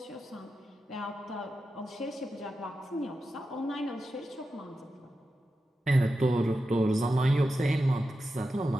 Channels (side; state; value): both; normal; correlation 0.91